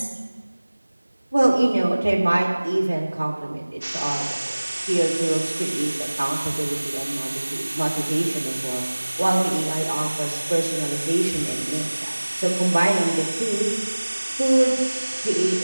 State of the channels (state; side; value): inverted; both; correlation -1.00